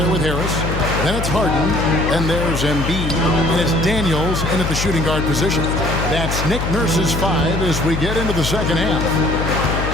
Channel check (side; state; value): left; noise; hum, 3 dB below the sound